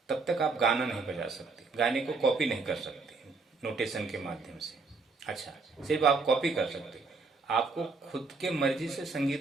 तब तक आप गाना नहीं बजा सकते, गाने को कॉपी नहीं कर सकते नोटेशन के माध्यम से। अच्छा, सिर्फ आप कॉपी कर सकते, आपको खुद के मर्जी से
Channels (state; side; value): quieter; left; 4.2 dB